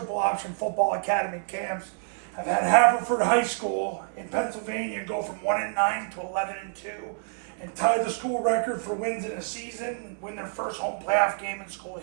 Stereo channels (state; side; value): silent; left; 57 dB below the other